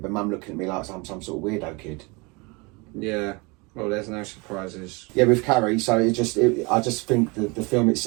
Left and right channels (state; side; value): quieter; left; 27.6 dB